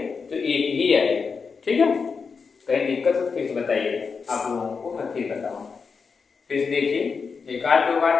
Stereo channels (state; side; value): quieter; right; 5.3 dB